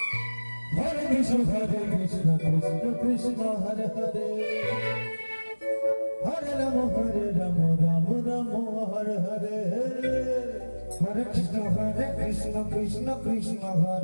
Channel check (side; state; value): both; inverted; correlation -1.00